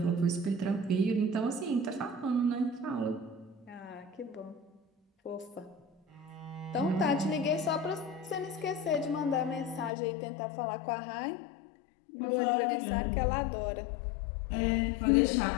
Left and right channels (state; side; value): drops out; right; at 9.9 s